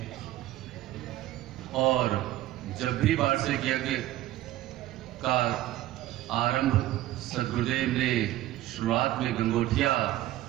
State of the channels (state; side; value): quieter; left; 15.1 dB